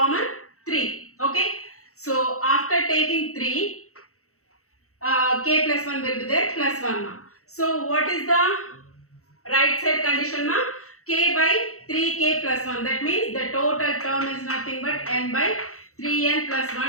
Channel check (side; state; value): right; late; 0.64 ms